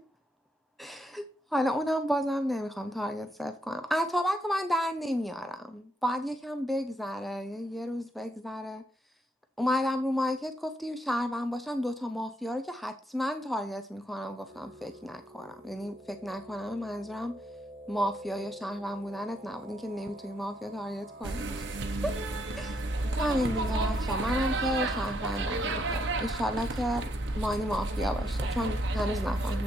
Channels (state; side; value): normal; both; correlation 0.76